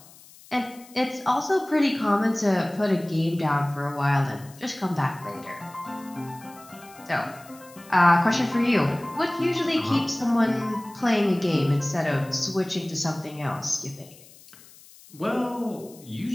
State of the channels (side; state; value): left; noise; hiss, 23 dB below the sound